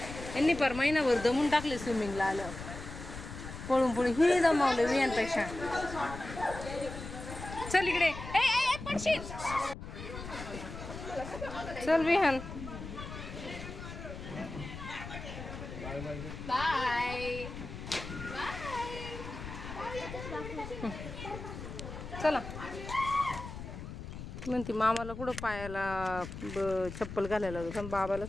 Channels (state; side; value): noise; left; rumble, 10 dB below the sound